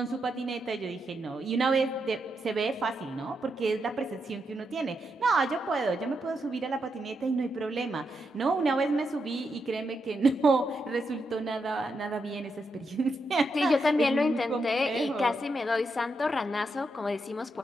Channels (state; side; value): normal; both; correlation 0.83